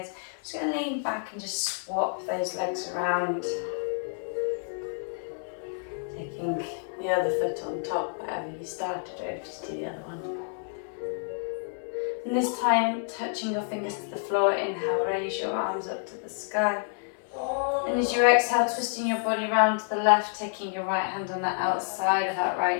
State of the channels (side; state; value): right; silent; digital silence